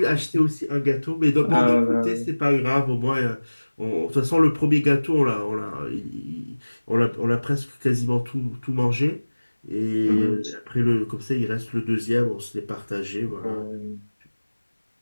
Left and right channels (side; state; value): both; inverted; correlation -1.00